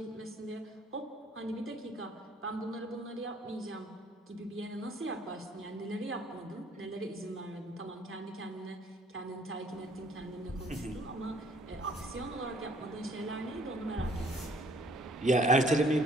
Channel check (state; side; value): normal; both; correlation 0.61